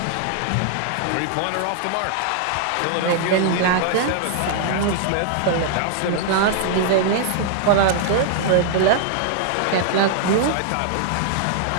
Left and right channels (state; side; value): different; both; correlation -0.01